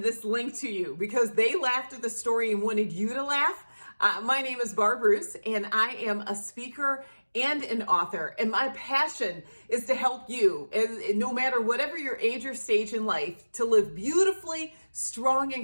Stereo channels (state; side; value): inverted; both; correlation -1.00